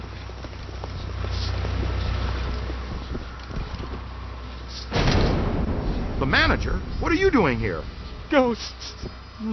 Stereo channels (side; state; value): both; identical; correlation 1.00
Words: The manager? What are you doing here? Ghosts,